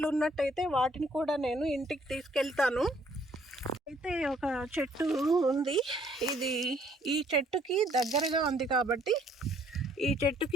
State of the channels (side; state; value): both; normal; correlation 0.63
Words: ఉన్నట్టయితే వాటిని కూడా నేను ఇంటికి తీసుకెళ్తాను. అయితే ఒక చెట్టు ఉంది, ఇది ఈ చెట్టుకి దగ్గరగా ఉంది కాబట్టి,